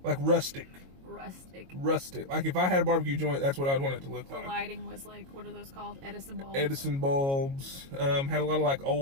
Like rustic. Like if I had a barbecue joint, that's what I'd want it to look like. The lighting was like, what are those called? Edison bulbs. Had a lot of like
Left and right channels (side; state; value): left; late; 22 ms